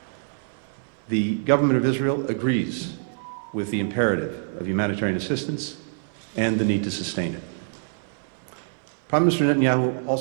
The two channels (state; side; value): silent; left; 58 dB below the other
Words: The government of Israel agrees with the imperative of humanitarian assistance and the need to sustain it. Prime Minister Netanyahu